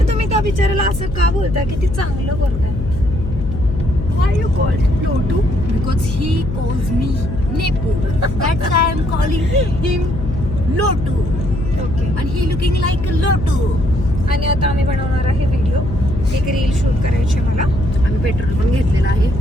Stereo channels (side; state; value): left; noise; hum, 6 dB below the sound